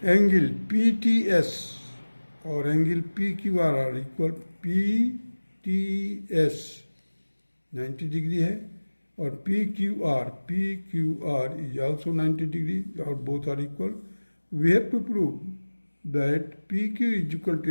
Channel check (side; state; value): both; inverted; correlation -1.00